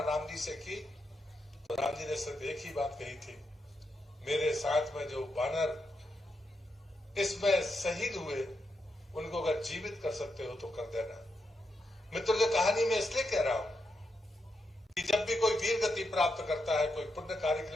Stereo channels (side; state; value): both; normal; correlation 0.84